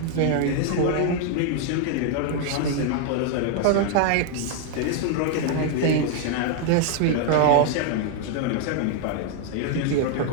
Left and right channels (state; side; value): different; both; correlation 0.00